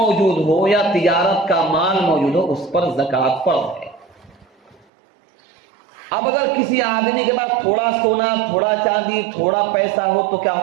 ہو یا تجارت کا مال موجود ہو، اس پر زکوٰۃ فرض ہے۔ اب اگر کسی آدمی کے پاس تھوڑا سونا، تھوڑا چاندی، تھوڑا پیسہ ہو تو کیا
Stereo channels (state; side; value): drops out; left; at 4.9 s